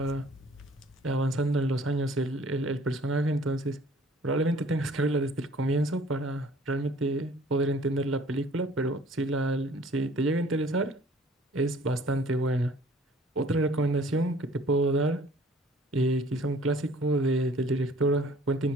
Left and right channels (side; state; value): both; normal; correlation 0.53